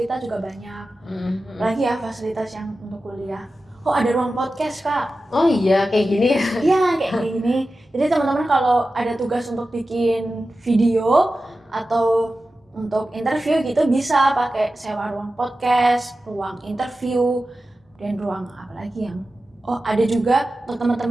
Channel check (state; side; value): normal; both; correlation 0.94